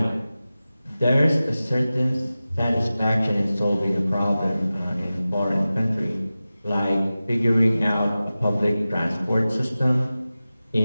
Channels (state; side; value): inverted; both; correlation -0.95